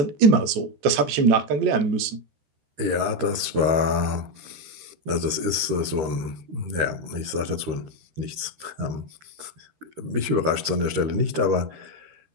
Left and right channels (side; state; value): left; late; 13 ms